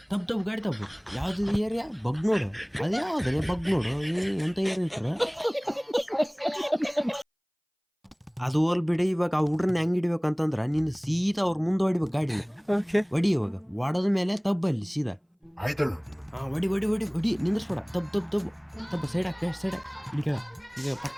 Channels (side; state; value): both; identical; correlation 1.00